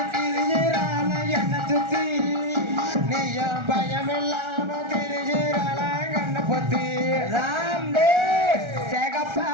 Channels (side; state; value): left; late; 1.4 ms